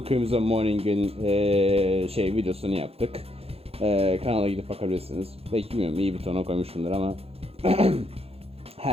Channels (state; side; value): late; left; 0.29 ms